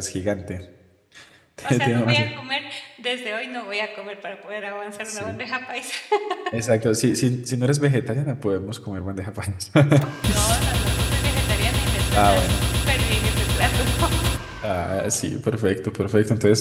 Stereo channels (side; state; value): both; identical; correlation 1.00